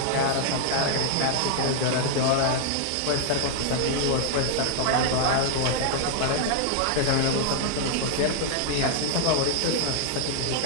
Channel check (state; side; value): different; both; correlation -0.01